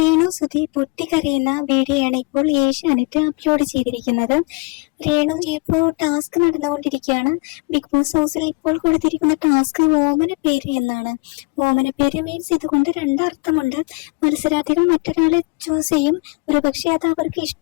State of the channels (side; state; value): right; quieter; 29.3 dB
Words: സുധി പൊട്ടിക്കരയുന്ന വീഡിയോയാണ് ഇപ്പോൾ ഏഷ്യാനെറ്റ് അപ്ലോഡ് ചെയ്തിരിക്കുന്നത്. രേണു ഇപ്പോൾ ടാസ്ക് നടന്നുകൊണ്ടിരിക്കുകയാണ്. ബിഗ് ബോസ് ഹൗസിൽ ഇപ്പോൾ കൊടുത്തിരിക്കുന്ന ടാസ്ക് ഓമന പേര് എന്നാണ്. ഓമന പേര് മീൻസ് ഇതുകൊണ്ട് രണ്ടർത്ഥമുണ്ട്. മത്സരാർത്ഥികൾ മറ്റൊരാളെ ചൂസ് ചെയ്യും. ഒരുപക്ഷെ അത് അവർക്ക്